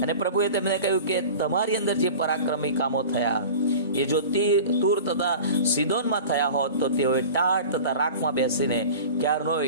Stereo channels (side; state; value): both; inverted; correlation -0.37